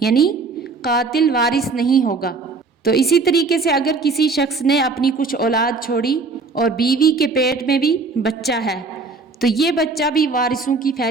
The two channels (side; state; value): left; quieter; 4.1 dB